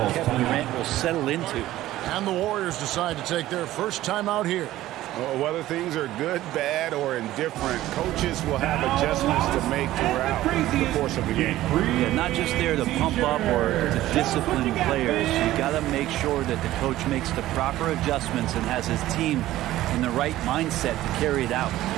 Kevin Durant will settle into. And the Warriors decide to take their first time out here. Whether things are good, bad, or indifferent, coaches will have adjustments to make throughout the course of the game. Yeah, not just there to pump up or to discipline players. You got to make sure that the coach makes the proper adjustments and has his team in the right mindset to carry it out.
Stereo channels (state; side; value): quieter; left; 15.1 dB